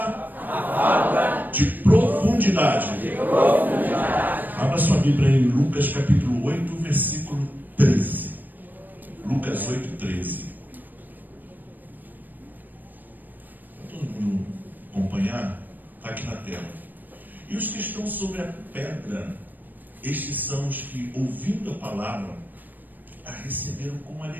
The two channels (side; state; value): left; late; 0.088 ms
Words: de profundidade profundidade. Abra sua Bíblia em Lucas capítulo 8, versículo 13. Lucas 8, 13. Para todo mundo acompanhar, está aqui na tela. E os que estão sobre a pedra, estes são os que, ouvindo a palavra, a receberam com